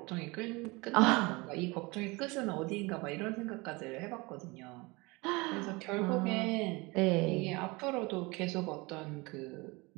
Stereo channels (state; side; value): quieter; left; 25.0 dB